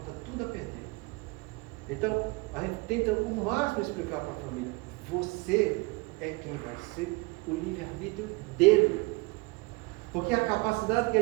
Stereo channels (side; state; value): left; quieter; 25.7 dB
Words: tudo a perder. Então, a gente tenta o máximo explicar para a família: você é quem vai ser o livre-arbítrio dele. Porque a capacidade que